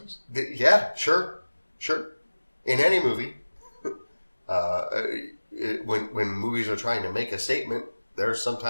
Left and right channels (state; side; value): inverted; both; correlation -1.00